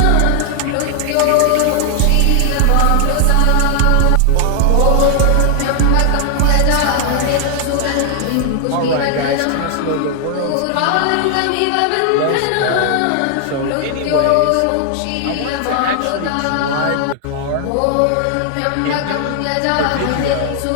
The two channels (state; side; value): different; both; correlation 0.00